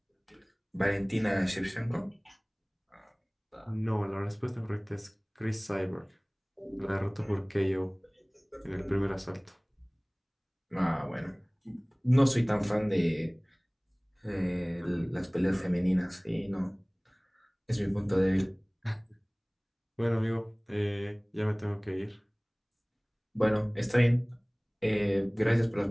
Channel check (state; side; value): identical; both; correlation 1.00